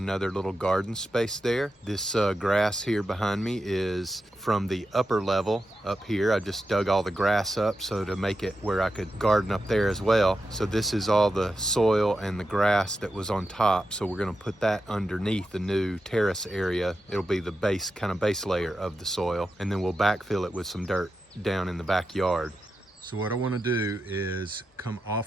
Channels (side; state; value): both; normal; correlation 0.89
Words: little garden space there. This grass here behind me is from the upper level up here. I just dug all the grass up so to make it where I could garden up there as well. So this is all the soil and the grass that was on top. So we're going to put that underneath the new terrace area. It'll be the base layer of the soil, and then we'll backfill it with some dirt down in the backyard. So what I want to do is come